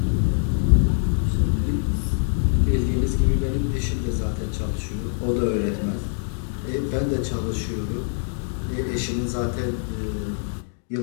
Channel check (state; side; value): silent; right; digital silence